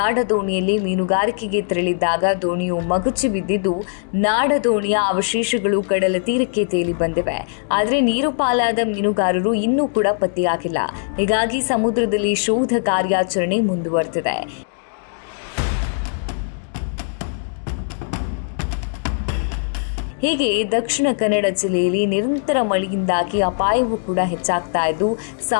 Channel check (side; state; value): right; silent; digital silence